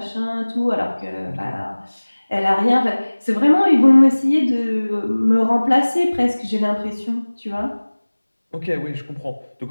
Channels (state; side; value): inverted; both; correlation -1.00